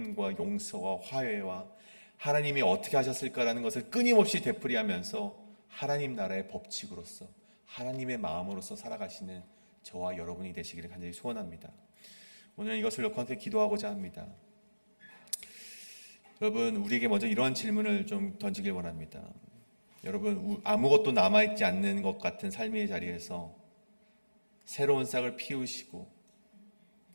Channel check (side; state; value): both; inverted; correlation -1.00